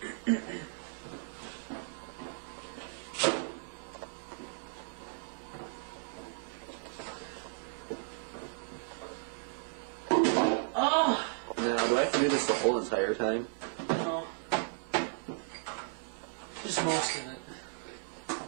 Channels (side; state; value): left; silent; 55 dB below the other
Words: Oh! Now, do I have to do this the whole entire time? No. Just most of it.